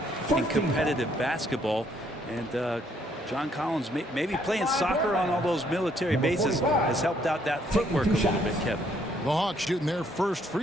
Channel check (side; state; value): both; normal; correlation 0.68